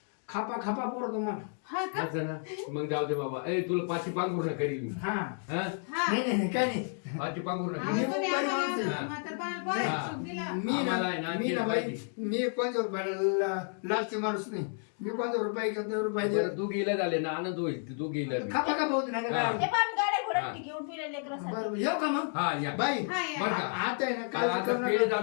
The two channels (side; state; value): right; silent; 56 dB below the other